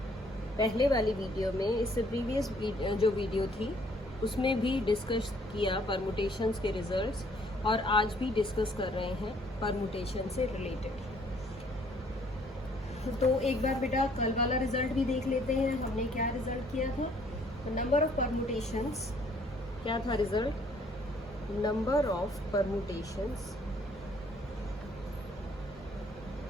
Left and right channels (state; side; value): normal; both; correlation 0.62